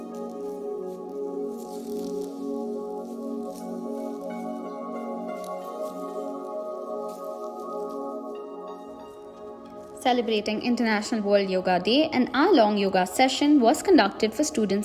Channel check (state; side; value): identical; both; correlation 1.00